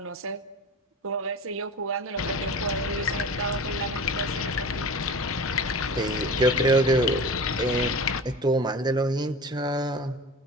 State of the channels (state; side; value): normal; both; correlation 0.35